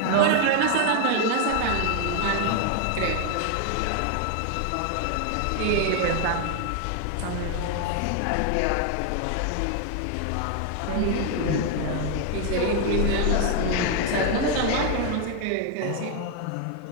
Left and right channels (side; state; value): both; different; correlation 0.00